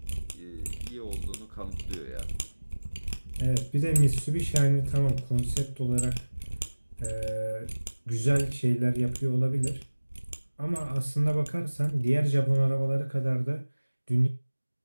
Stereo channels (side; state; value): both; inverted; correlation -1.00